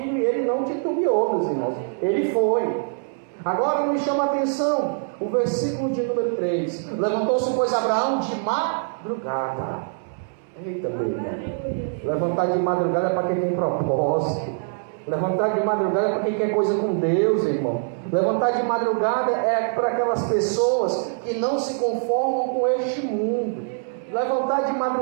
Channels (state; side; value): silent; left; digital silence